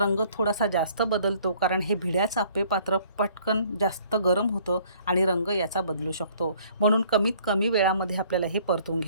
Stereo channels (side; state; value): both; inverted; correlation -0.58